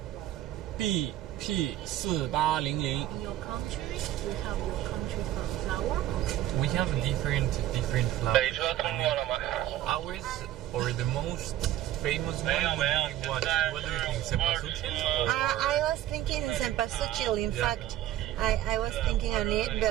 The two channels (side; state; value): left; quieter; 13.3 dB